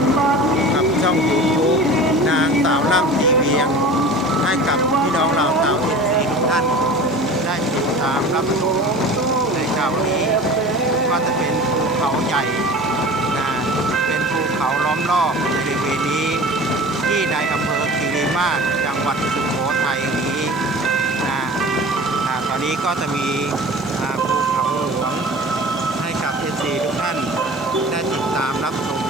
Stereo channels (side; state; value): right; noise; hiss, 27 dB below the sound